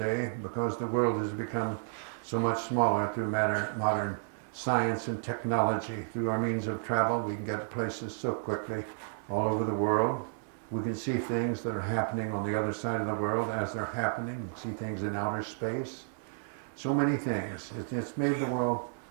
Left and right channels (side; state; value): left; silent; 57 dB below the other